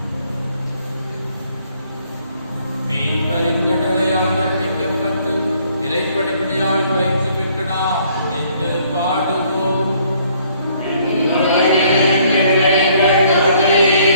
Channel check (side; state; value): both; inverted; correlation -0.63